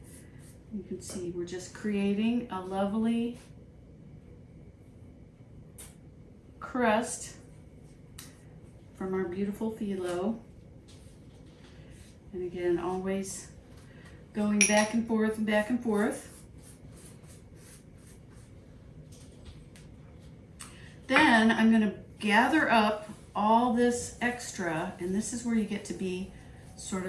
You can see we're just creating a lovely crust from our beautiful filo. And again, always going back and forth and back and forth. Then I'm going to gather up all this extra, and this is where you get to be sort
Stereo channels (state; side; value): identical; both; correlation 1.00